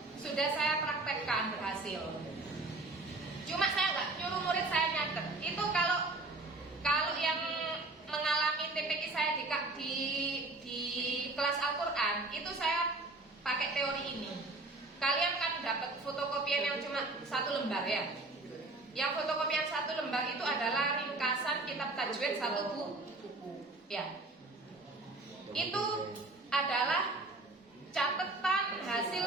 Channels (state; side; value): quieter; left; 3.1 dB